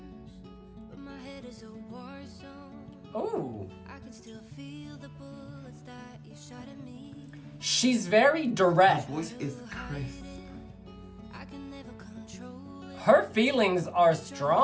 but my head is a war zone. Ooh. I can still feel the bullets that you shot at me. She's very direct. Her voice is crisp. I can never control it. Her feelings are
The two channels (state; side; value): identical; both; correlation 1.00